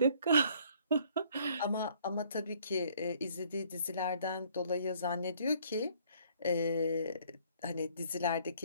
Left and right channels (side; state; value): both; inverted; correlation -0.61